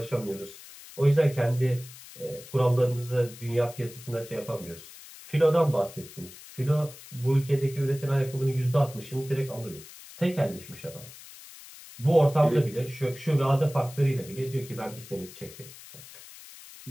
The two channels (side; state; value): left; noise; hiss, 17 dB below the sound